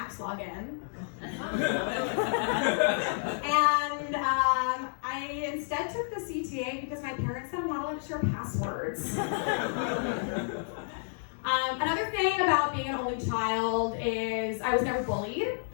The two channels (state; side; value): silent; right; digital silence